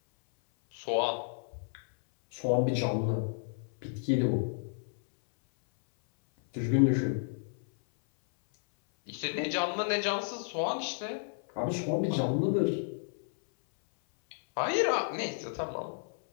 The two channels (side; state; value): right; silent; 57 dB below the other